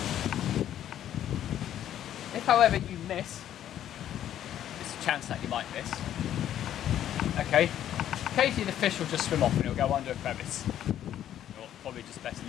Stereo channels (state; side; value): quieter; right; 11.1 dB